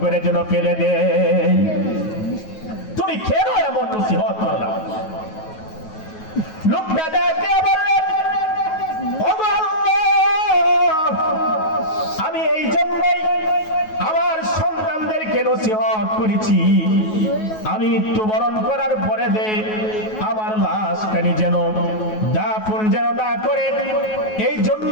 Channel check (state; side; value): late; right; 9.3 ms